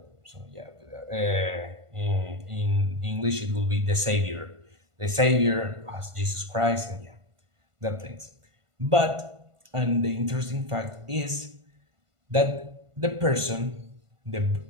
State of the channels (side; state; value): left; late; 1.5 ms